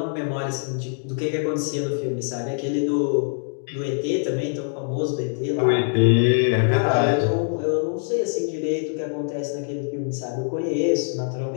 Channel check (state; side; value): silent; right; digital silence